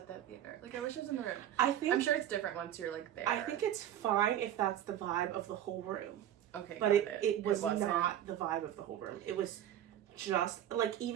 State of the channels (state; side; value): quieter; left; 11.3 dB